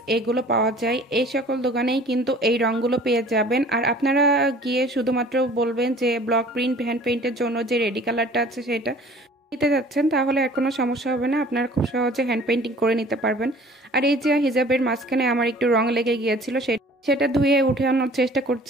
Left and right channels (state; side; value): normal; both; correlation 0.49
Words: এগুলো পাওয়া যায়, এই সকল দোকানেই কিন্তু এই রঙগুলো পেয়ে যাবেন। আর আপনারা গিয়ে শুধুমাত্র বলবেন যে ব্লক প্রিন্ট হ্যান্ড পেইন্টের জন্য যে রেডি কালারটা আছে সেটা নিতে যাচ্ছেন, তাহলে আর কোনো সমস্যা হবে না, আপনারা খুব সহজে হ্যান্ড পেইন্টিং করে নিতে পারবেন। আর এই যে হিজাবের মাঝখানে আমার একটু রং লেগে গিয়েছিল, সেটা ধুয়ে উঠে আনার চেষ্টা